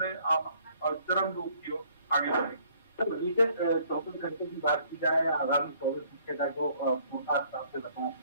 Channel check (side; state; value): both; inverted; correlation -0.62